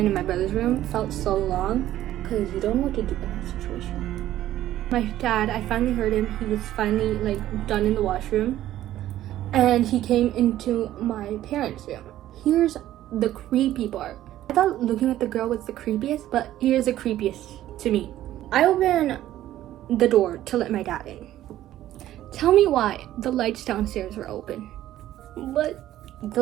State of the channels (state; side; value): quieter; left; 13.4 dB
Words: in my brother's room. It felt so long because you don't know what to do in that situation. My dad, I finally heard him. He was finally like done in the washroom, and he came into my parents' room. Here's the creepy part. I thought looking at the girl was the creepiest, but here's the creepiest to me. I opened the door to let my dad in. Tell me why the lights downstairs were open. But the